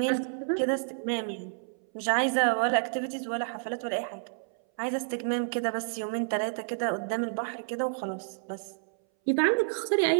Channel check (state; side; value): silent; left; 58 dB below the other